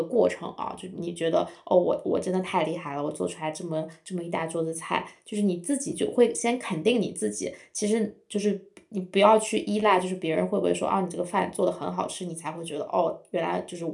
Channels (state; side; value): identical; both; correlation 1.00